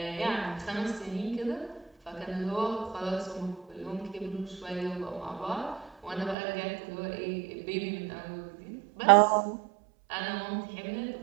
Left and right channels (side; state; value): left; drops out; at 6.4 s